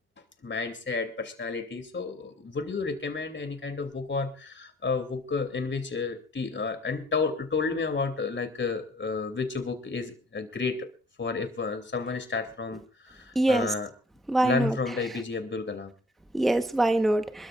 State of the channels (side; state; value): both; normal; correlation 0.57